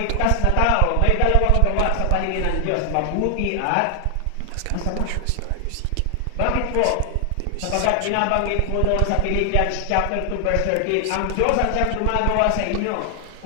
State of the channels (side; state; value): both; different; correlation 0.00